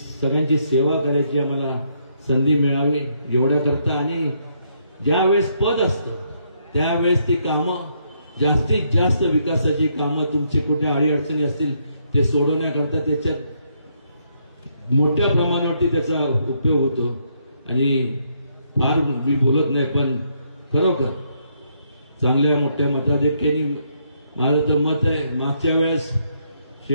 सेवा करायची आम्हाला संधी मिळावी एवढ्या करता. आणि ज्या वेळेस पद असतं त्यावेळेस ती कामं जास्तीत जास्त विकासाची कामं तुमचे कुठे अडीअडचणी असतील ते सोडवण्याकरता त्याच्यात मोठ्या प्रमाणावरती त्याचा उपयोग होतो. आणि फार मी बोलत नाही पण खरोखर चांगल्या मोठ्या मताधिक्याने माझं तर मत आहे. मागच्या वेळेस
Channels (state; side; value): inverted; both; correlation -0.74